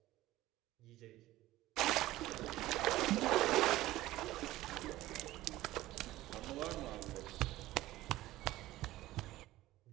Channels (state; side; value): quieter; left; 16.4 dB